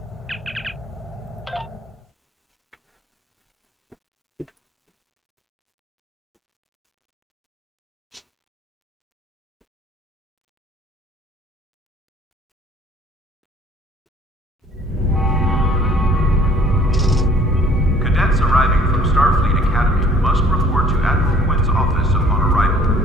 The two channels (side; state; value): both; normal; correlation 0.55